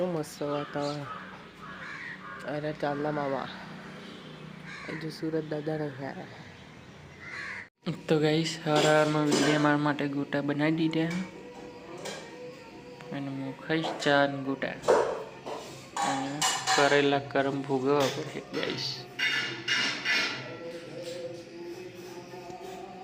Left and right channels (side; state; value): both; identical; correlation 1.00